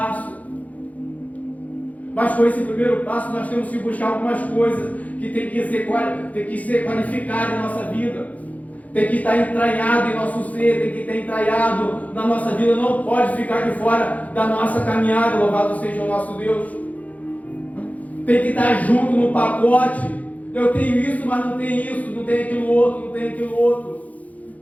Mas com esse primeiro passo nós temos que buscar algumas coisas que tem que ser qualificado em nossa vida, tem que estar entranhado em nosso ser, tem que estar entranhado na nossa vida, não pode ficar de fora da nossa caminhada. Louvado seja o nosso Deus. Tem que estar junto no pacote. Eu tenho isso, mas não tenho isso, não tenho aquilo outro, não tenho aquilo outro.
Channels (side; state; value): right; late; 0.073 ms